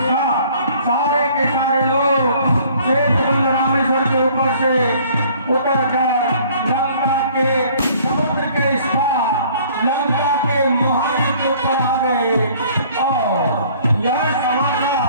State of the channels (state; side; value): inverted; both; correlation -0.55